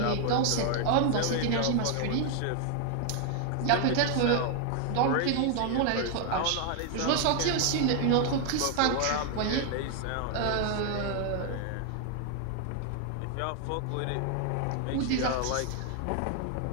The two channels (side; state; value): both; different; correlation 0.00